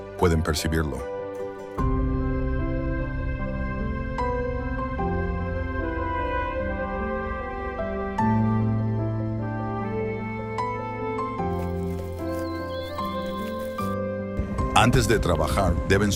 pueden percibirlo. Antes de trabajar, deben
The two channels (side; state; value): both; identical; correlation 1.00